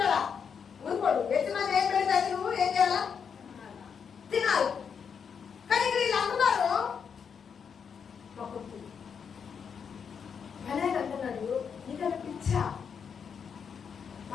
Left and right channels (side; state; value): right; quieter; 6.8 dB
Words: ఊరుకోడు. యజమాని ఏం పెడితే అది నువ్వు ఏం చేయాలా? తినాలి. కానీ ఇక్కడ వీళ్ళు అంటున్నారు అనేది అంటున్నాడు, నీకన్నా పిచ్చా?